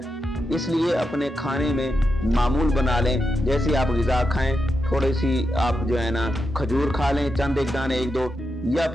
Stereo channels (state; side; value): normal; both; correlation 0.87